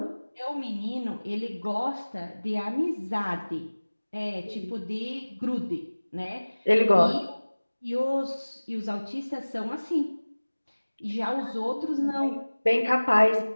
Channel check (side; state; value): both; inverted; correlation -1.00